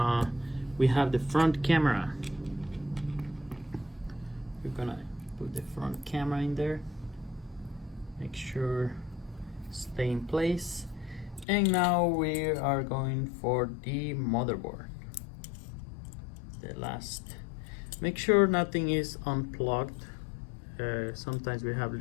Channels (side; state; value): right; drops out; at 11.5 s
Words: we have the front camera. We're gonna put the front camera in there. Make sure stay in place. And now we are going for the motherboard. The last. Make sure nothing is unplugged. Sometimes we have